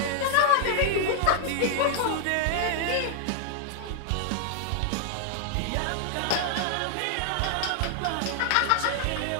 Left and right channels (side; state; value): both; different; correlation 0.00